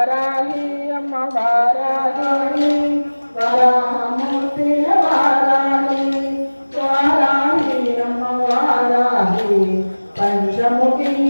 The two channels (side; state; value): both; inverted; correlation -1.00